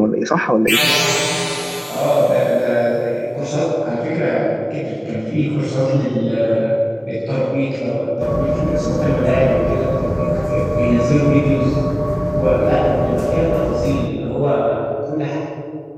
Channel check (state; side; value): identical; both; correlation 1.00